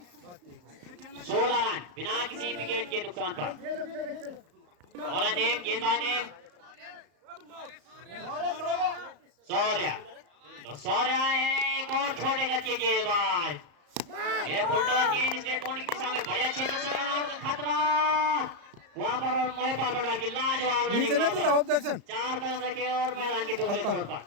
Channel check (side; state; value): left; late; 35 ms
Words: 16 रन बिना किसी विकेट के नुकसान पर। बॉलर ने गेंदबाज ने सौर्या, तो सौर्या है एक और छोटे कद के गेंदबाज। ये फुलटॉस गेंद स्टेट पॉइंट की दिशा में बढ़िया क्षेत्र से खतरा वहां पर और महिपाल पटवाल की लाजवाब रनिंग। 4 कदम रखे और मैदान के दूसरे छोर पर